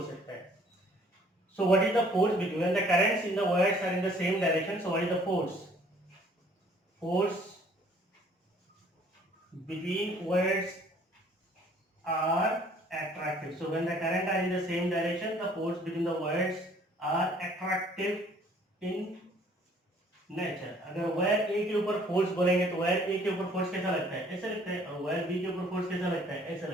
सकता है. So what is the force between when the currents in the wires are in the same direction? So what is the force? Force between wires are attractive. So when the current are in the same direction, the force between the wires are attractive in nature. अगर wire ए के ऊपर force बोलेंगे तो wire ए के ऊपर force कैसा लगता है? ऐसा लगता है. और वायर बी के ऊपर फोर्स कैसा लगता है? ऐसा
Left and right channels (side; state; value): both; normal; correlation 0.58